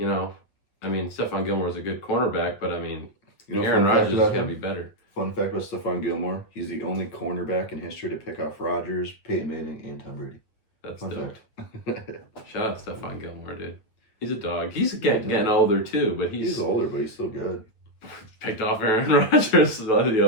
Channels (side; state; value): right; late; 9.3 ms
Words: I mean, Stephon Gilmore is a good cornerback, but I mean, Aaron Rodgers has got to be better. Fun fact about Stephon Gilmore, he's the only cornerback in history to pick off Rodgers, Peyton Manning, and Tom Brady. That's dope. Shout out to Stephon Gilmore, dude. He's a dog. He's getting older too, but he's older, but he's still good. Picked off Aaron Rodgers the